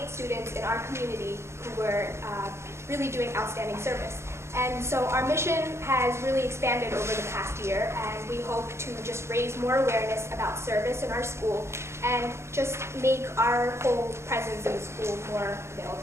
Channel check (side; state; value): left; late; 0.13 ms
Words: students in our community who were really doing outstanding service. And so our mission has really expanded over the past year, and we hope to just raise more awareness about service in our school and just make our whole presence in the school more